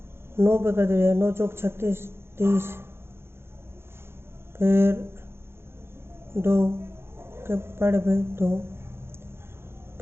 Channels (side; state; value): left; late; 0.12 ms